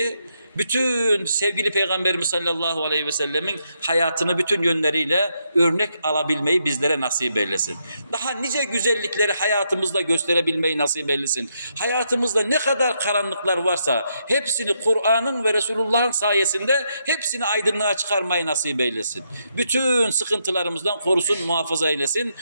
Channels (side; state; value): both; inverted; correlation -0.79